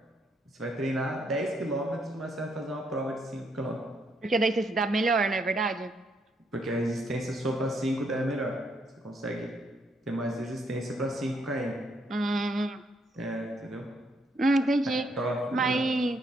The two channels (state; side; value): normal; both; correlation 0.73